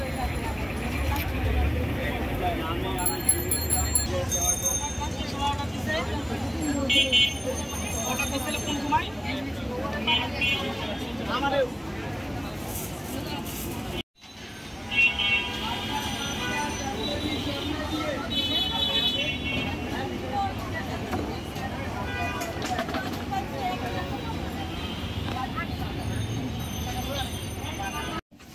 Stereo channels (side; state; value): both; identical; correlation 1.00